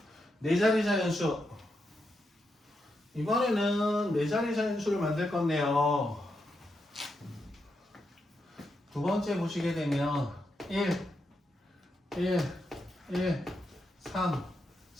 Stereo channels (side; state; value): both; normal; correlation 0.84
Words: 네 자리 자연수. 이번에는 네 자리 자연수를 만들 건데요. 두 번째 보시게 되면 1, 1, 1, 3,